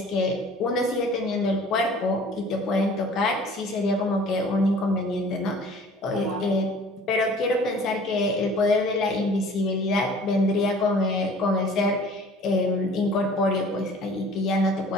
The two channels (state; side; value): normal; both; correlation 0.49